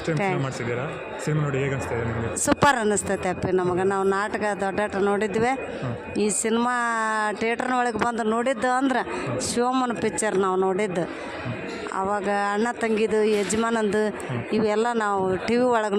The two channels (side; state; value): both; identical; correlation 1.00